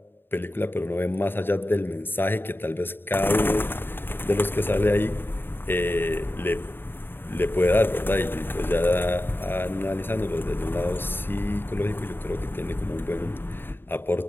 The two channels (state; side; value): late; right; 0.10 ms